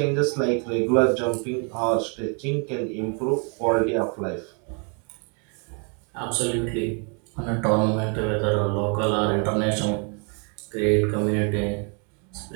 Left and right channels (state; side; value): quieter; left; 37.1 dB